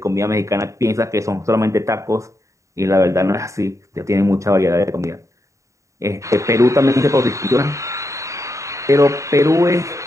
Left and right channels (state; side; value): late; left; 0.15 ms